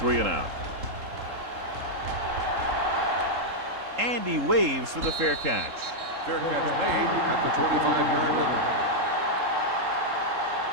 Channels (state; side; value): late; left; 3.8 ms